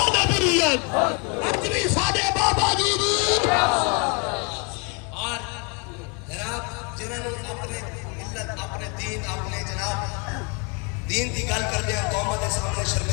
نبویت اپنی ساڈے بابا جی دی اور جناب جنہوں نے اپنے ملت اپنے دین اپنے جناب دین کی گل کرتے ہیں قوم کے سامنے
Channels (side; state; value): right; quieter; 33.9 dB